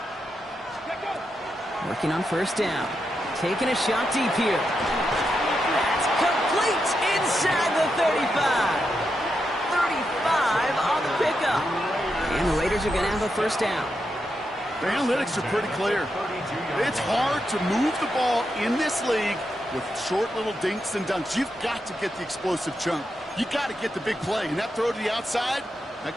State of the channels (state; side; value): normal; both; correlation 0.85